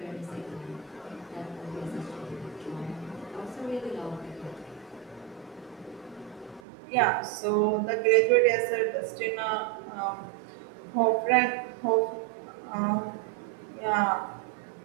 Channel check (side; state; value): left; drops out; at 6.6 s